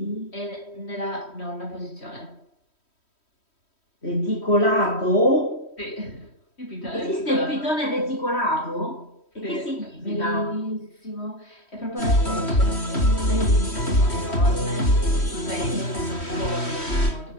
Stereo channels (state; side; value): late; right; 3.1 ms